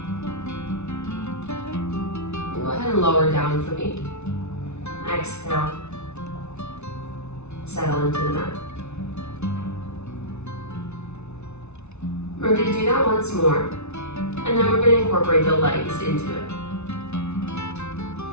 And go ahead and lower down for me. Exhale. Settle into the mat. We're going to do that once more, and then we're going to incorporate the legs into it.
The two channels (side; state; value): right; late; 0.81 ms